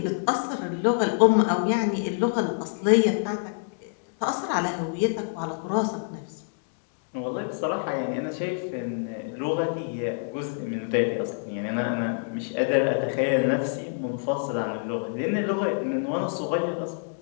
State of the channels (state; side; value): silent; right; digital silence